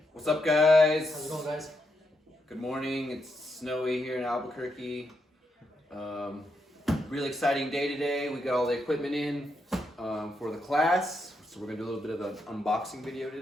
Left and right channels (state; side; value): normal; both; correlation 0.81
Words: What's up, guys? How's it going, guys? Good morning. It's snowy here in Albuquerque. Really exciting day today. We got all the equipment in for the class, so we're gonna do a little bit of an unboxing video